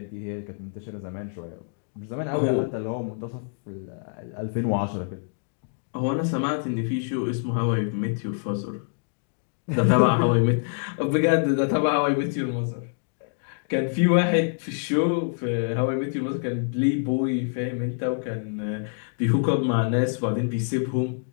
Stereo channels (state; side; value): silent; right; digital silence